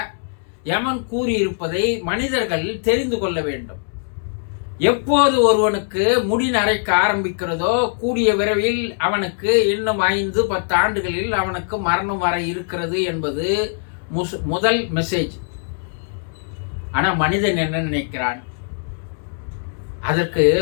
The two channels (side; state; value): right; silent; digital silence